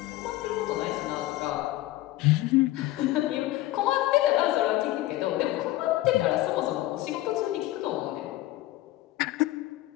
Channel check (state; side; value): quieter; right; 16.5 dB